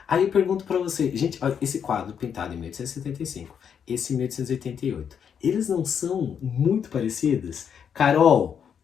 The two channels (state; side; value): quieter; right; 7.7 dB